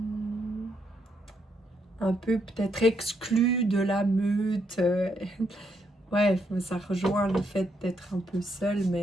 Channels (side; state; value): both; normal; correlation 0.77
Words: un peu peut-être exclu de la meute. Ouais, ça rejoint le fait d'être un peu seul,